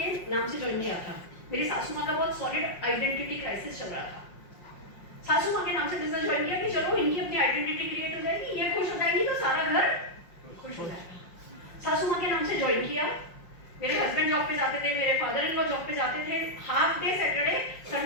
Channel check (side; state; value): right; late; 5.7 ms